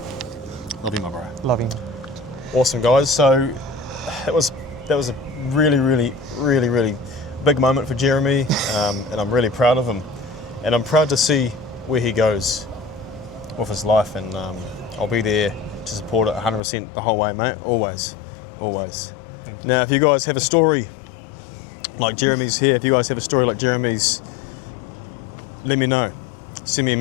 Love you, my bro. Loving. Awesome, guys. So that was a really, really, really, really big moment for Jeremy, and I'm really proud of him. And I'm proud to see where he goes with his life, and I'll be there to support it 100% the whole way, mate. Always, always. Thank you. Now, if you guys have a story like Jeremy's here, if you guys have a story like Jeremy's, let me know. Send me a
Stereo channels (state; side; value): drops out; right; at 16.6 s